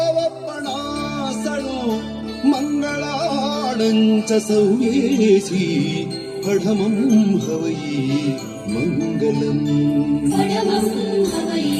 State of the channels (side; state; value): both; identical; correlation 1.00